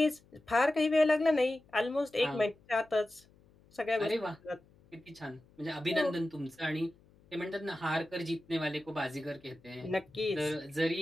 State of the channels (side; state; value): left; noise; hum, 29 dB below the sound